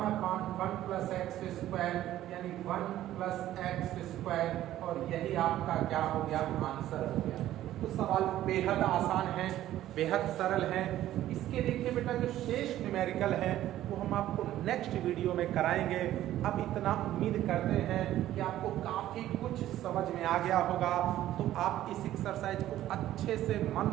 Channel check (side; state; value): left; quieter; 13.4 dB